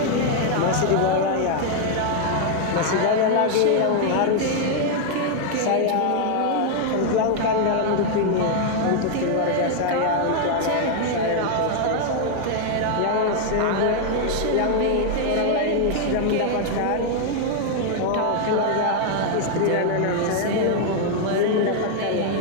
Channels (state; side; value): different; both; correlation 0.00